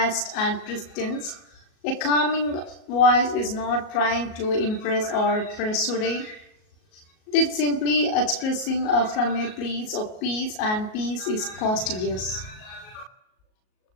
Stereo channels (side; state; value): right; late; 38 ms